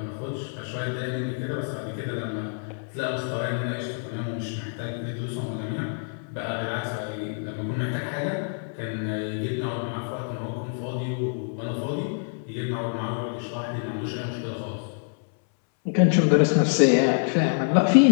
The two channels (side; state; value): right; silent; 61 dB below the other